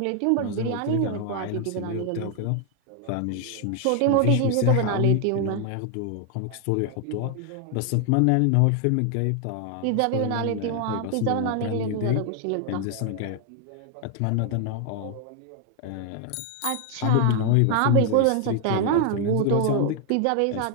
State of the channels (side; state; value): both; different; correlation 0.00